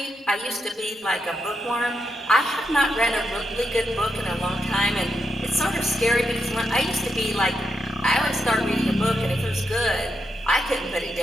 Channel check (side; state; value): both; normal; correlation 0.83